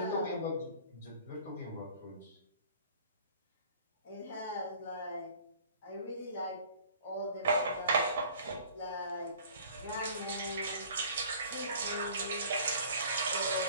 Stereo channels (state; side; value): inverted; both; correlation -0.50